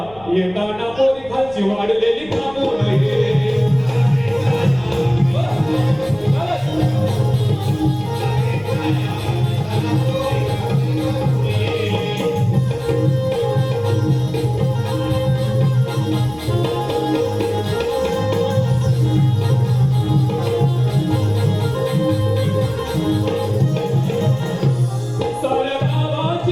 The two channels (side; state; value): left; noise; rumble, 23 dB below the sound